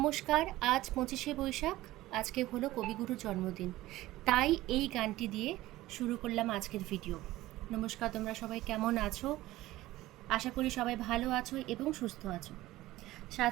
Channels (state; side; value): quieter; left; 16.8 dB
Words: আজ 25শে বৈশাখ। আজকে হলো কবিগুরুর জন্মদিন, তাই এই গানটি দিয়ে শুরু করলাম আজকের ভিডিও। নমস্কার, তোমরা সবাই কেমন আছো? আশা করি সবাই ভালো আছো এবং সুস্থ আছো।